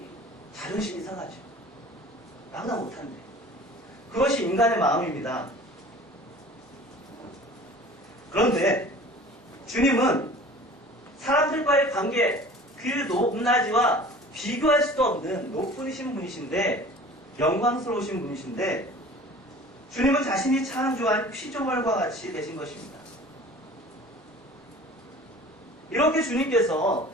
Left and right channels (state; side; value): normal; both; correlation 0.44